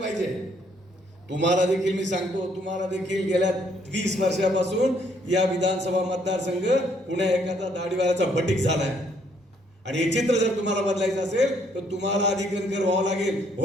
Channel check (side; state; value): both; normal; correlation 0.68